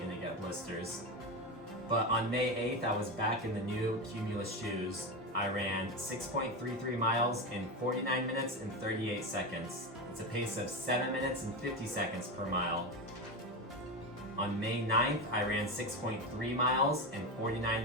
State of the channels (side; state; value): both; normal; correlation 0.17